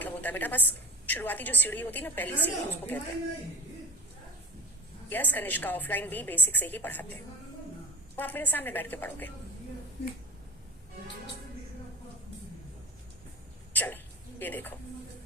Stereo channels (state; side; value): normal; both; correlation 0.37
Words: होता है बेटा बस शुरुआती जो सीढ़ी होती है ना, पहली सीढ़ी, उसको कहते हैं। यस कनिष्का, ऑफलाइन भी बेसिक से ही पढ़ाते हैं, वो आप मेरे सामने बैठ के पढ़ोगे। चलो ये देखो,